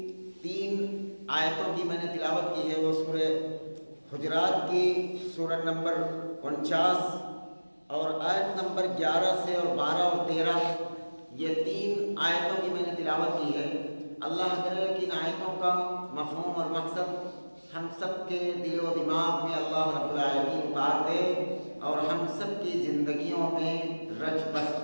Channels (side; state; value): both; inverted; correlation -1.00